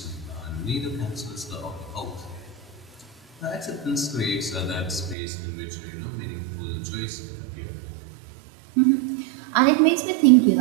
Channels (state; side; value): drops out; left; at 5.2 s